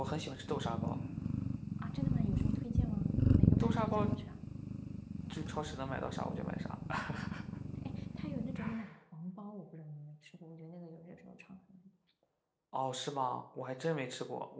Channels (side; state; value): both; identical; correlation 1.00